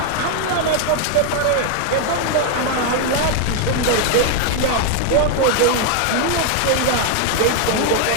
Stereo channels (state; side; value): different; both; correlation 0.01